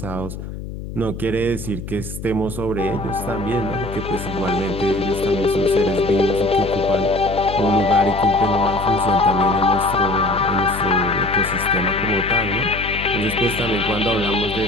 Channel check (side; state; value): left; noise; hum, 9 dB below the sound